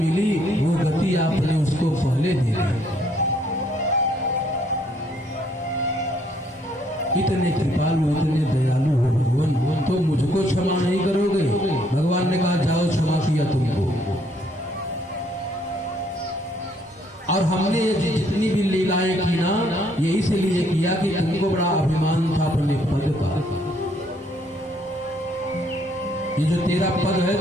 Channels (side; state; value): both; normal; correlation 0.67